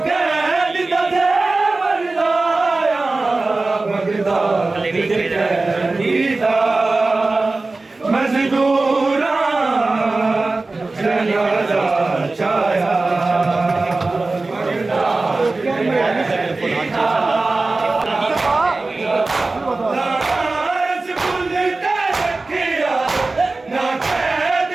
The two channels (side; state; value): left; quieter; 3.4 dB